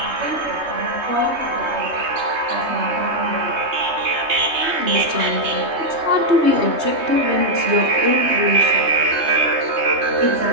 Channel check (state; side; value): late; left; 3.2 ms